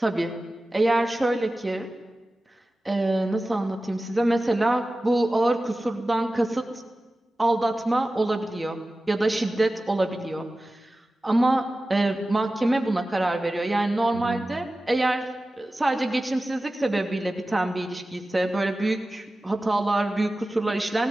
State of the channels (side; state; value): both; normal; correlation 0.95